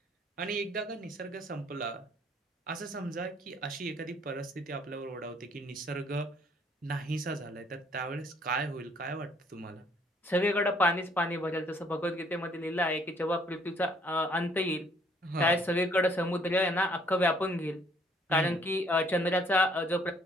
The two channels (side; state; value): both; normal; correlation 0.63